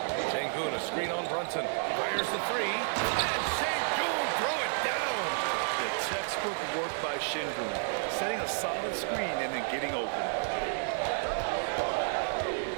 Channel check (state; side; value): silent; left; digital silence